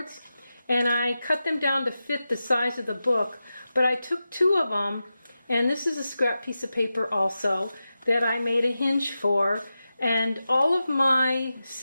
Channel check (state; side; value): inverted; both; correlation -0.92